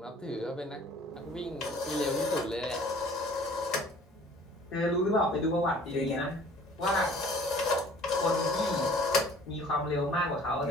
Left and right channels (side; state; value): both; normal; correlation 0.51